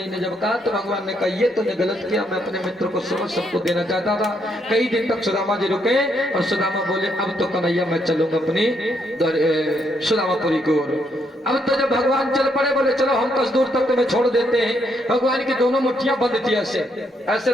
ने जब कहा तो भगवान ने कहा ये तुमने गलत किया, मैं अपने मित्र को समझ सबको देना चाहता था। कई दिन तक सुदामा जी रुके और सुदामा बोले अब तो कन्हैया मैं चलूंगा अपनी सुदामापुरी की ओर। अब तो जब भगवान चल पड़े बोले चलो हम 10 दूर तक तुम्हें छोड़ देते हैं। भगवान की दोनों मुट्ठियां बंद थी, ऐसे ऐसे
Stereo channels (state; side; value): normal; both; correlation 0.75